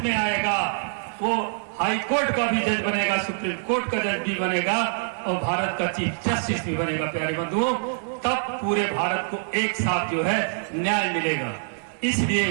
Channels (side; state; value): left; silent; digital silence